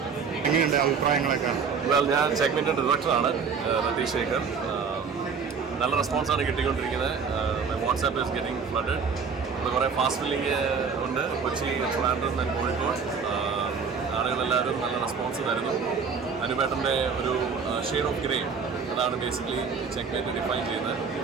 എങ്ങനെയുണ്ട് അഭിപ്രായങ്ങളൊക്കെ? ഞാൻ ചെക്ക്മെന്റ് ഡയറക്ടറാണ് രതീഷ് ശേഖർ. നല്ല റെസ്പോൺസാണ് കിട്ടിക്കൊണ്ടിരിക്കുന്നത്. WhatsApp is getting flooded. ഇവിടെ കുറേ ഫാസ്റ്റ് ഫില്ലിങ് ഉണ്ട്. കൊച്ചി, ട്രിവാൻഡ്രം ആൻഡ് കോഴിക്കോട്. ആളുകളെല്ലാവരും നല്ല റെസ്പോൺസ് തരുന്നു. അനുപേട്ടൻ്റെ ഒരു ഷെയ്ഡ് ഓഫ് ഗ്രേ, അതാണ് ബേസിക്കലി ചെക്ക്മെന്റ് ഡിഫൈൻ ചെയ്യുന്നത്.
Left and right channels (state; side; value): quieter; left; 5.8 dB